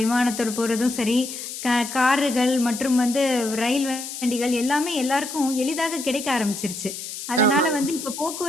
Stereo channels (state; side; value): noise; left; hiss, 9 dB below the sound